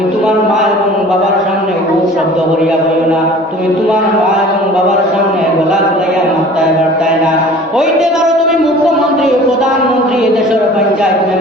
তোমার মা এবং বাবার সামনে খুব শব্দ করিয়া বলো না। তুমি তোমার মা এবং বাবার সামনে গলা গলাইয়া মাত্তায় বার্তায় না। হইতে পারো তুমি মুখ্যমন্ত্রী, প্রধানমন্ত্রী, দেশের পঞ্চায়েত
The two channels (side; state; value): both; normal; correlation 0.46